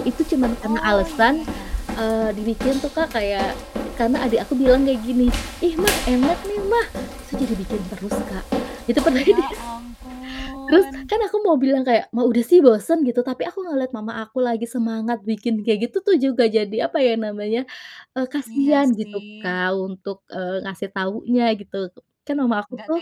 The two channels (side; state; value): both; identical; correlation 1.00